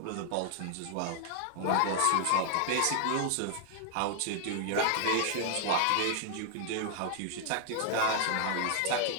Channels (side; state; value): both; different; correlation 0.00